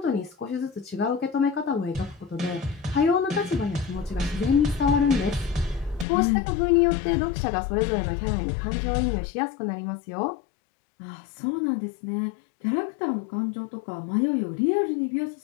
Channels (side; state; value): right; drops out; at 6.1 s